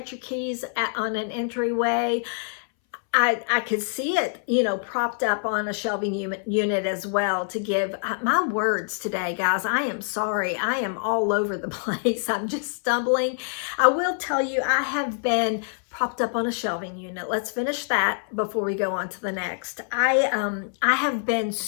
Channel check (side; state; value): right; silent; 61 dB below the other